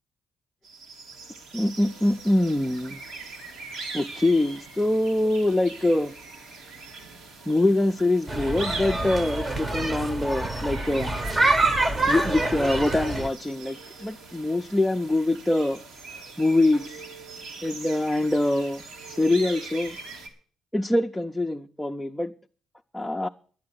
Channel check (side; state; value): both; normal; correlation 0.93